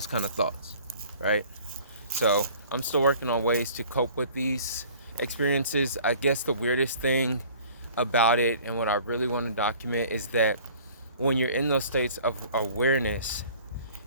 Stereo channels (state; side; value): inverted; both; correlation -0.50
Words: kind of thoughts, right? So I'm still working on ways to cope with these experiences. I guess the weirdest thing about it, and what I really want to document, is that when you're in those states of awareness,